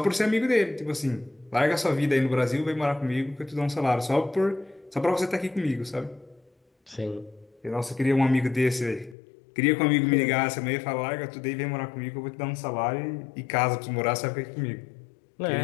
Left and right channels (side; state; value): right; drops out; at 9.2 s